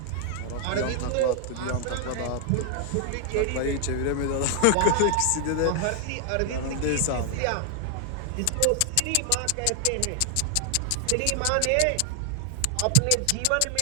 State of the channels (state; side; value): different; both; correlation 0.00